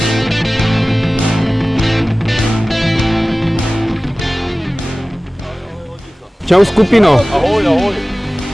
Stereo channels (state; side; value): normal; both; correlation 0.97